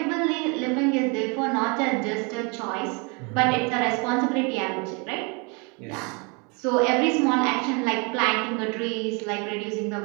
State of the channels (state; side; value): quieter; left; 31.8 dB